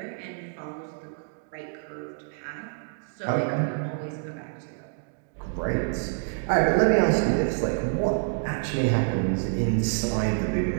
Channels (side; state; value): left; silent; 60 dB below the other